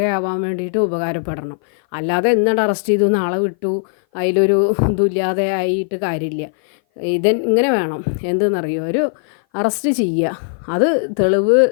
വേണ്ടിയിട്ട് ഉപകാരപ്പെടണം. അല്ലാതെ എന്നിട്ട് അറസ്റ്റ് ചെയ്തു നാളെ വിട്ടു അതിലൊരു ഇതുമില്ലാതെ ആയിട്ട് കാര്യമില്ല. ഇങ്ങനെ വേണം. എന്തെന്നറിയോ, ഒരു അറസ്റ്റ് ചെയ്യുക, അത് തെളിവ്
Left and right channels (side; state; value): right; silent; 58 dB below the other